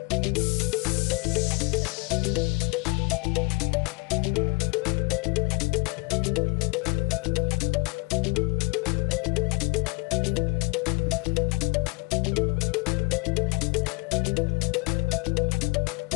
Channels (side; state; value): right; quieter; 25.3 dB